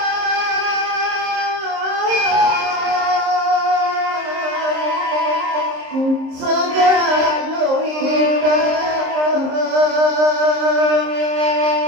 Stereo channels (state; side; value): late; left; 26 ms